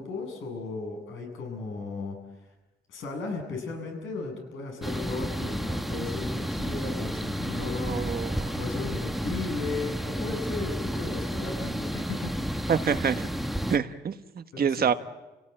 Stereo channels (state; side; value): normal; both; correlation 0.66